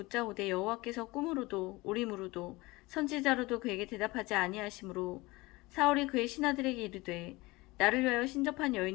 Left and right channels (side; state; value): right; quieter; 22.0 dB